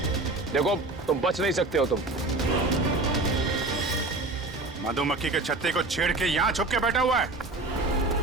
देखो, तुम बच नहीं सकते हो। तुम मधुमक्खी के छत्ते को छेड़ के यहाँ छुप के बैठा हुआ है।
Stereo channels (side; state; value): left; quieter; 3.1 dB